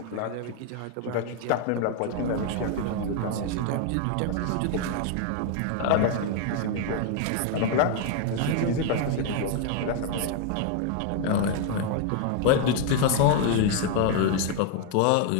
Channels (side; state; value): both; different; correlation 0.00